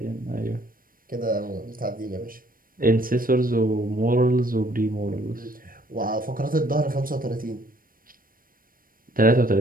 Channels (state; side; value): late; left; 0.41 ms